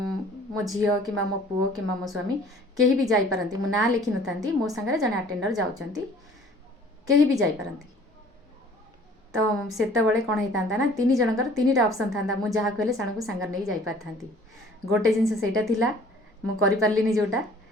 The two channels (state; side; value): normal; both; correlation 0.52